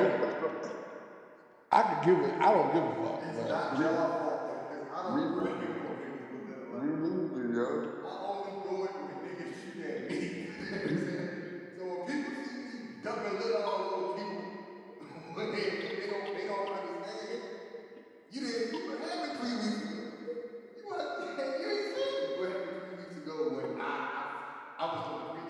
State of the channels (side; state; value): both; identical; correlation 1.00